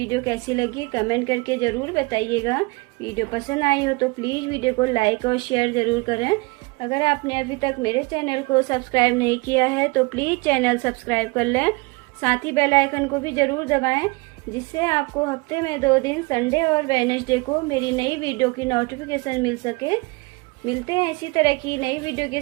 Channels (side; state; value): left; quieter; 26.4 dB